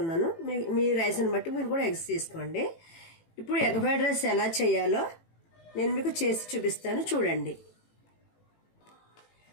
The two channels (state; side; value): late; right; 18 ms